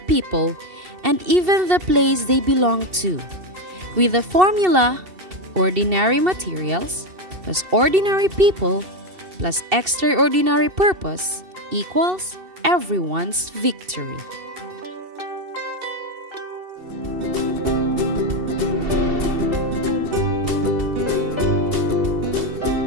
people, and even the place they belong to. With the formula, ordinary materials, plus ordinary people, plus extraordinary purpose equals everyone's victory.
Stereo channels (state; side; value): late; left; 2.7 ms